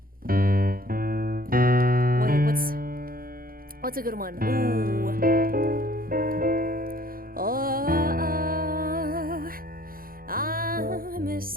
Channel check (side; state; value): left; late; 0.42 ms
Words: Wait, what's a good one? Ooh. Oh, I'm